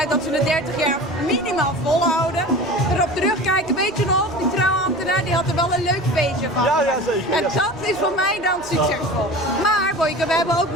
dat ze de 30 jaar minimaal volhouden. Erop terugkijken, weet je nog, die trouwambtenaar die had er wel een leuk feestje van. Ja, zeker. En dat is voor mij dan succesvol. Maar Boyke, we hebben ook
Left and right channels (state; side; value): noise; right; rumble, 22 dB below the sound